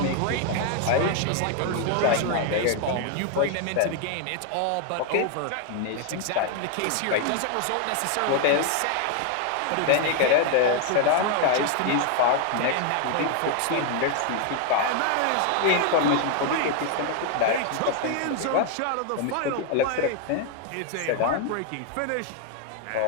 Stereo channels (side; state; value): both; different; correlation 0.00